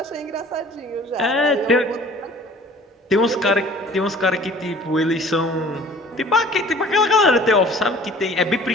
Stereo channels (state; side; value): normal; both; correlation 0.49